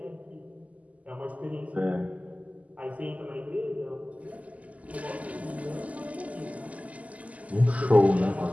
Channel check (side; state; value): left; late; 0.072 ms